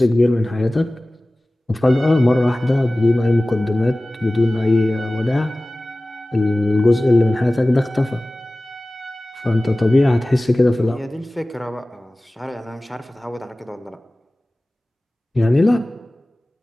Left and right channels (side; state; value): both; normal; correlation 0.98